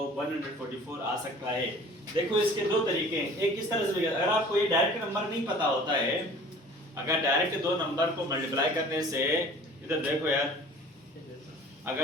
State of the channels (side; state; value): both; normal; correlation 0.47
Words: 144 आ सकता है? देखो इसके दो तरीके हैं, एक किस तरह से, अगर आपको ये डायरेक्ट नंबर नहीं पता होता है, अगर डायरेक्ट दो नंबर को मल्टीप्लाई करने से, इधर देखो यार, अगर